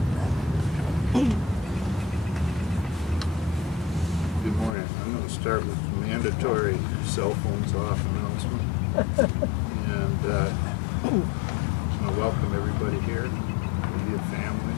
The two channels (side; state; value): right; drops out; at 4.7 s